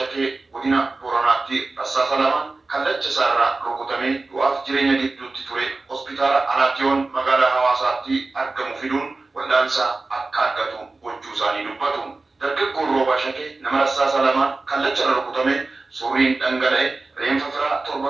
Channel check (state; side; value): quieter; left; 3.5 dB